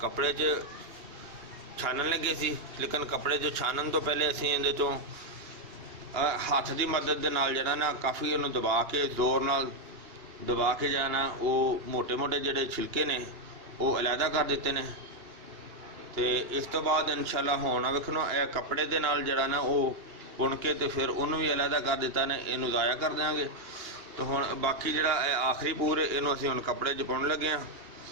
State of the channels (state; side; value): late; left; 2.8 ms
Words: कपड़े च छानन लगे सी, लेकिन कपड़े जो छानन तो पहले असीं इहदे चों हत्थ की मदद दे नाल जिहड़ा ना काफ़ी इहनूं दबा के जोर नाल दबा के जाना वो मोटे मोटे जिहड़े छिलके ने वो अलहदा कर दिते ने। तो इस तो बाद इंशाअल्लाह हुण वेखो कपड़े दे नाल जिहड़ा ना वो बुन के तो फिर उन्होंने भी अलहदा कर दिता ने, इनू ज़ाया कर देंगे। तो हुण बाकी जिहड़ा आखिरी पूर इनू असीं हुण कपड़े च पाउण लगे हाँ।